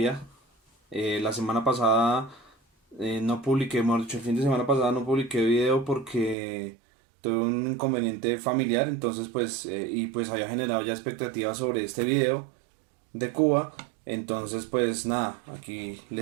La semana pasada no publiqué, mejor dicho, el fin de semana pasada no publiqué video porque tuve un inconveniente familiar, entonces pues había generado ya expectativas sobre este video de Cuba, entonces pues nada, aquí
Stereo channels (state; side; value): drops out; left; at 6.4 s